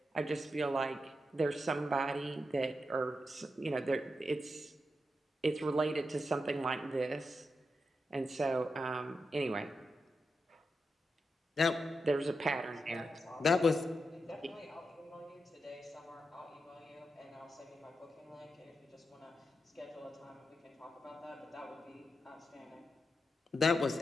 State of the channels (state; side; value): normal; both; correlation 0.87